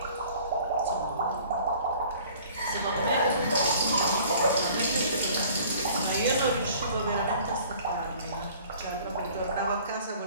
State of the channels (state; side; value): inverted; both; correlation -0.51